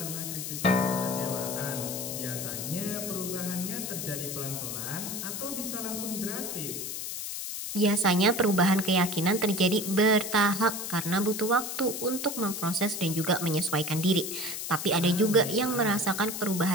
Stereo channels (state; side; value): noise; left; hiss, 5 dB below the sound